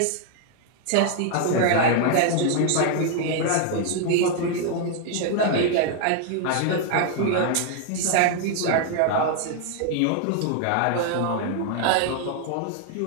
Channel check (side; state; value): both; different; correlation 0.00